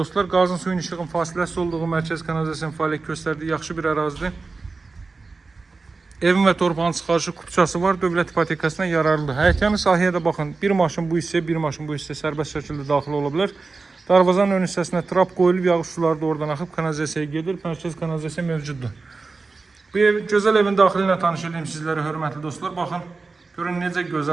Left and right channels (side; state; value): left; quieter; 4.0 dB